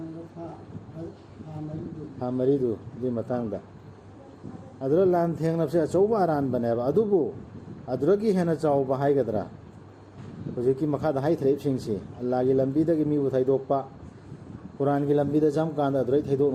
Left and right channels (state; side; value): identical; both; correlation 1.00